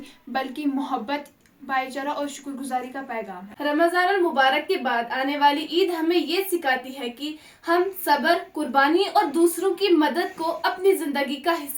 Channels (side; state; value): both; identical; correlation 1.00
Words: بلکہ محبت، بھائی چارہ اور شکر گزاری کا پیغام ہے۔ رمضان المبارک کے بعد آنے والی عید ہمیں یہ سکھاتی ہے کہ ہم صبر، قربانی اور دوسروں کی مدد کو اپنی زندگی کا